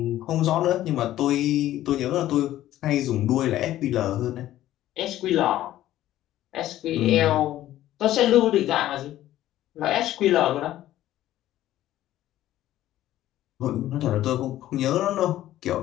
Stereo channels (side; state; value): right; quieter; 13.7 dB